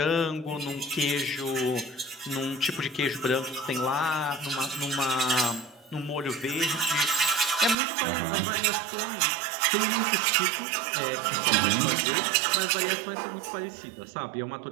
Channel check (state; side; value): drops out; left; at 7.8 s